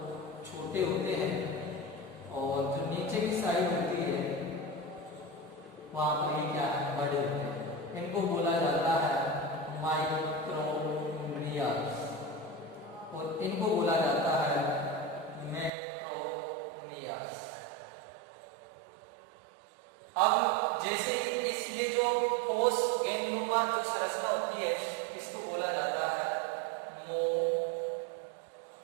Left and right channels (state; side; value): drops out; left; at 15.7 s